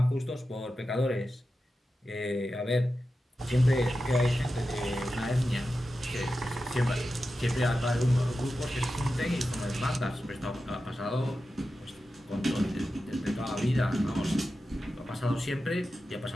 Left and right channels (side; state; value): both; normal; correlation 0.92